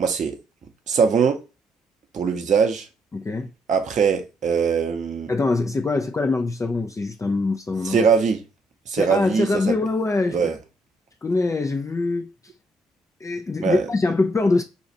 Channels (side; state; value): both; normal; correlation 0.73